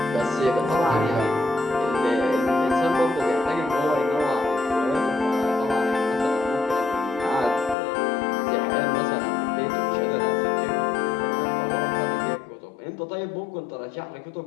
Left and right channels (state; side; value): drops out; right; at 7.8 s